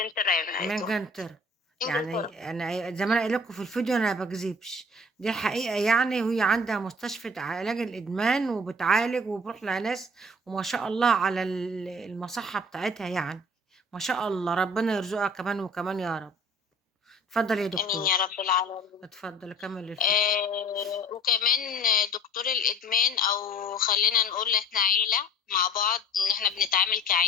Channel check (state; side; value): normal; both; correlation 0.47